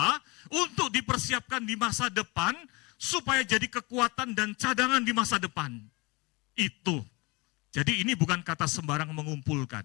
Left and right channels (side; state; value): right; quieter; 26.0 dB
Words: untuk dipersiapkan di masa depan, supaya jadi kekuatan dan cadangan di masa depan. Itu. Jadi ini bukan kata sembarang mengumpulkan.